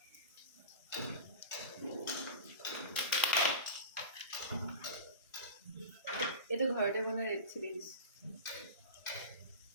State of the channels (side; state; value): both; inverted; correlation -0.31